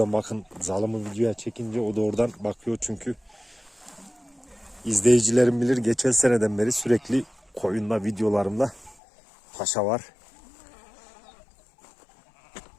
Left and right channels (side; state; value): right; drops out; at 9.0 s